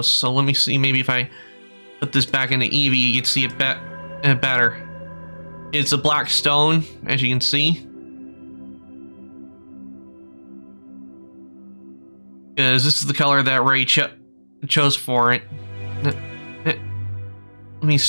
So let me see, maybe if I put this back into Eevee, you can see it better. It's a black stone, as you can see. Because this is the color that Ray chose for it. Let me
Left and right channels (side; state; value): both; inverted; correlation -1.00